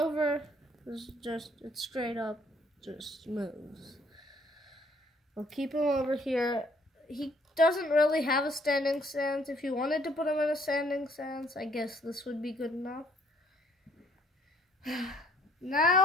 is just, it's straight up, just moves. We'll keep him over here. He doesn't really have a standing stance. If you wanted to put him in a standing stance, I guess this would be good enough.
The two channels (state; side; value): normal; both; correlation 0.63